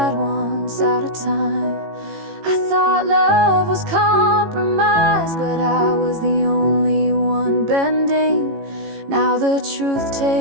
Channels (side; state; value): left; late; 18 ms